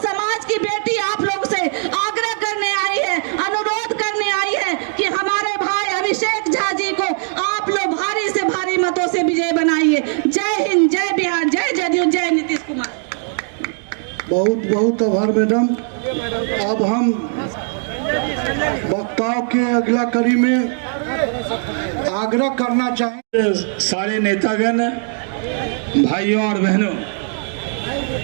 की बेटी आप लोग से आग्रह करने आई है, अनुरोध करने आई है कि हमारे भाई अभिषेक झा जी को आप लोग भारी से भारी मतों से विजय बनाइए। जय हिंद, जय बिहार, जय जदयू, जय नीतीश कुमार। बहुत बहुत आभार मैडम। अब हम वक्ताओं के अगला कड़ी में आग्रह करना चाहेंगे सारे नेतागण, भाइयों और बहनों,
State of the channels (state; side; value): silent; left; 56 dB below the other